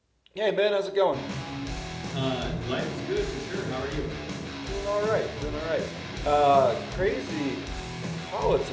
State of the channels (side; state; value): both; identical; correlation 1.00